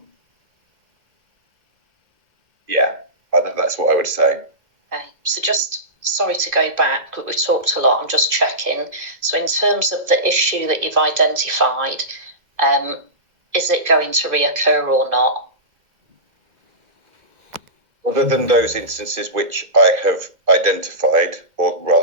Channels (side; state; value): left; late; 2.1 ms